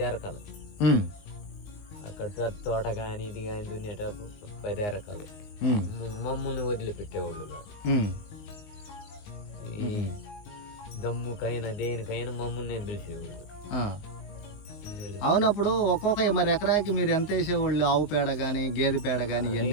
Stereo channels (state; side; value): late; right; 19 ms